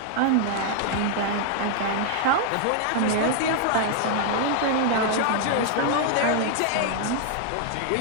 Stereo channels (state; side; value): different; both; correlation 0.00